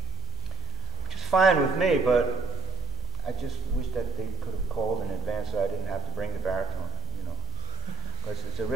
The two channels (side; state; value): left; quieter; 3.8 dB